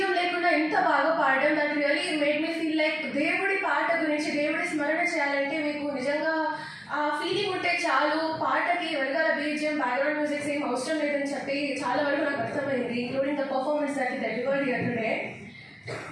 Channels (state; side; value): identical; both; correlation 1.00